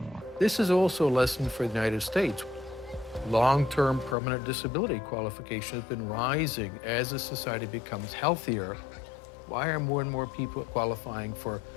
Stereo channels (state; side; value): drops out; right; at 4.2 s